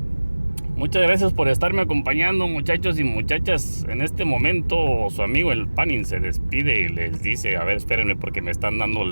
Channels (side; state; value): both; inverted; correlation -1.00